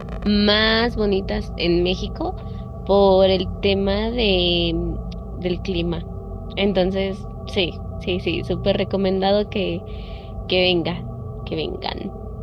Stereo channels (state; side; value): identical; both; correlation 1.00